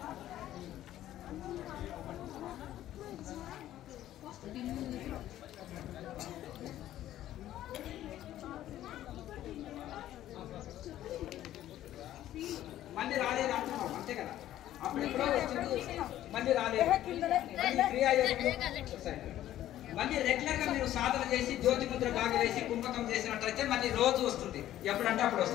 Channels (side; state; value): right; quieter; 13.0 dB